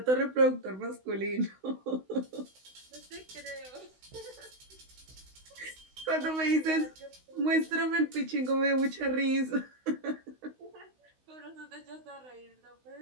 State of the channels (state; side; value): late; left; 16 ms